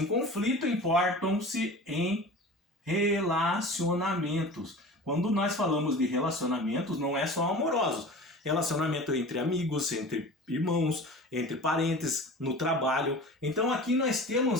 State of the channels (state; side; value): normal; both; correlation 0.37